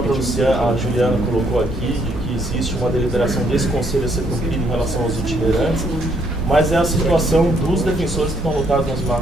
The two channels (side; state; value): both; normal; correlation 0.70